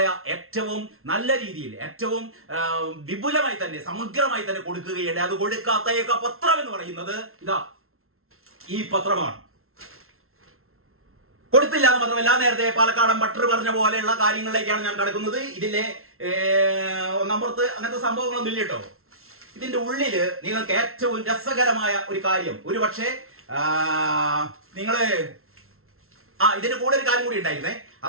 ഏറ്റവും നല്ല രീതിയിൽ, ഏറ്റവും വിപുലമായി തന്നെ, സമഗ്രമായി തന്നെ കൊടുക്കുകയുണ്ട്. അത് കൊടുക്കാത്ത ഏക പത്രം എന്ന് പറയുന്നത് ഈ പത്രമാണ്. കൊടുത്തില്ല എന്ന് മാത്രമല്ല, നേരത്തെ പാലക്കാടൻ ബട്ടർ പറഞ്ഞ പോലെയുള്ള കാര്യങ്ങളിലേക്കാണ് ഞാൻ കടക്കുന്നത്. ഇതിലെ ഒന്നാമത്തെ അങ്ങനത്തെ സംഭവങ്ങളൊന്നും ഇല്ല കേട്ടോ. ഇതിന്റെ ഉള്ളില് നിങ്ങൾക്ക് ഏറ്റവും രസകരമായ ഒരു കാര്യം, ഒരു പക്ഷേ ഇതിന്റെ കൂടെ ഒരു കാര്യം കൂടി ഉണ്ടായിരുന്നേ.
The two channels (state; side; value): late; left; 0.62 ms